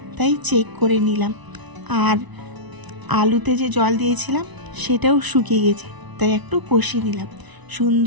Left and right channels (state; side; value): late; left; 1.0 ms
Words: তাই চেক করে নিলাম। আর আলুতে যে জল দিয়েছিলাম সেটাও শুকিয়ে গেছে, তাই একটু কষিয়ে নিলাম।